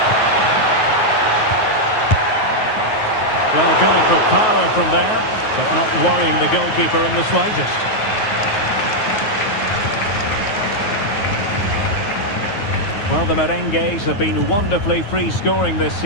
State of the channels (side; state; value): right; late; 9.4 ms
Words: Well, going for power from there, but not worrying the goalkeeper in the slightest. Well, the Merengues have been wonderfully free-scoring this